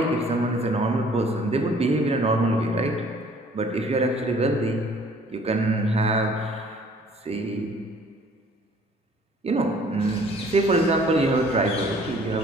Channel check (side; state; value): both; normal; correlation 0.56